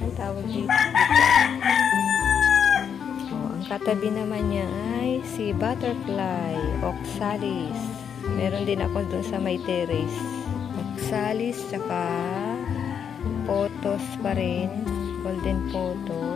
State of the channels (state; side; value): quieter; right; 7.7 dB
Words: tawag dito. Ang katabi naman niya ay si butterfly, oxalis. Meron din ako dun sa may terrace. Salis, tsaka photos pa rin. Golden